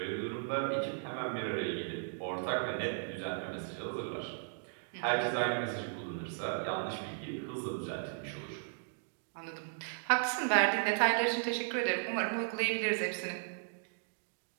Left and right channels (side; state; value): left; silent; digital silence